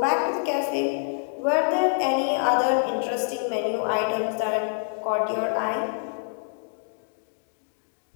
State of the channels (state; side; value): silent; right; digital silence